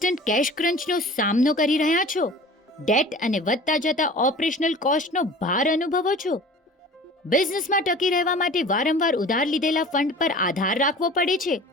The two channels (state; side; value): normal; both; correlation 0.42